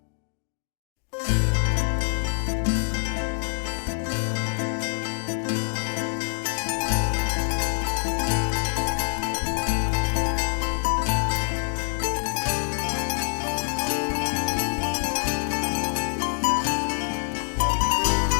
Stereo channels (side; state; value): right; silent; 56 dB below the other